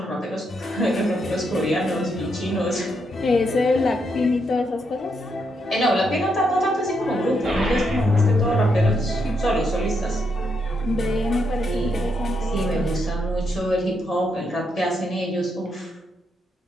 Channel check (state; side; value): normal; both; correlation 0.79